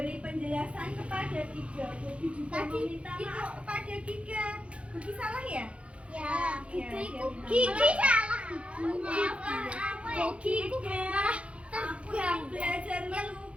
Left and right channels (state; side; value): late; left; 0.061 ms